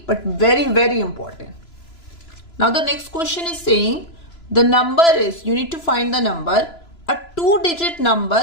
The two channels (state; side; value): late; right; 3.0 ms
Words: but very, very important. Now the next question is saying the number is, you need to find the number, a 2-digit